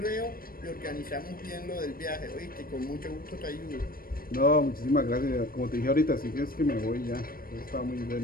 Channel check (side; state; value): right; late; 0.42 ms